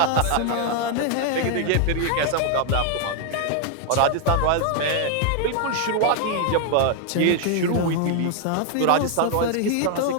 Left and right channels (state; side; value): different; both; correlation 0.00